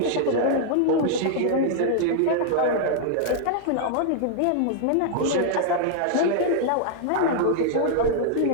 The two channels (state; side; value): different; both; correlation -0.01